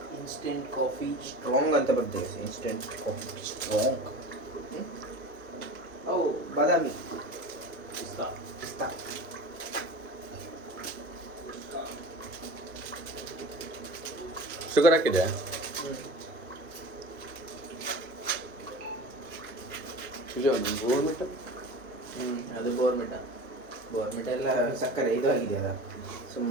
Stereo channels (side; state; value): both; normal; correlation 0.36